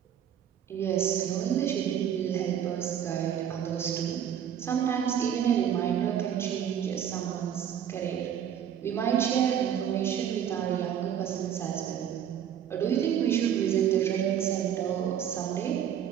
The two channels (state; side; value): quieter; left; 9.3 dB